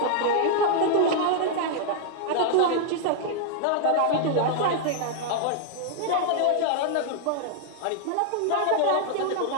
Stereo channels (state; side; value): different; both; correlation -0.01